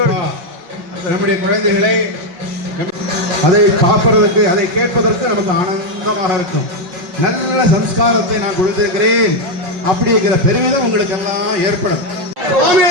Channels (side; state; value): left; late; 5.4 ms